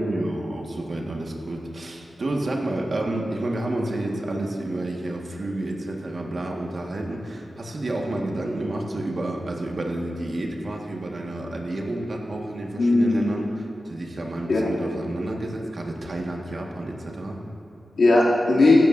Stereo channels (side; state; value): both; normal; correlation 0.92